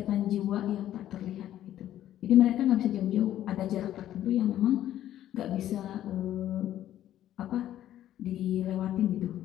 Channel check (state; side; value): quieter; right; 12.3 dB